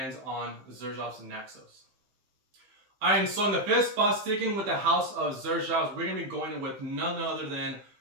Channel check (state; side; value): late; left; 15 ms